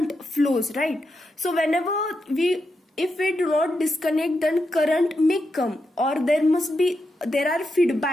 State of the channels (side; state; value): both; normal; correlation 0.86